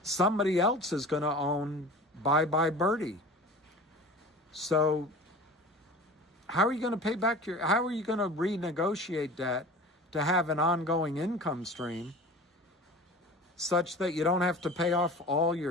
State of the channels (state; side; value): normal; both; correlation 0.38